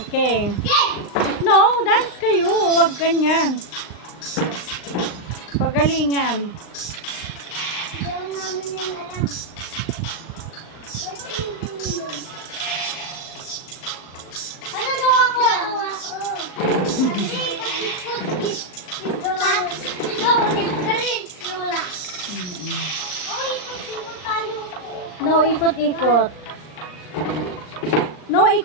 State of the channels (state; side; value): late; right; 39 ms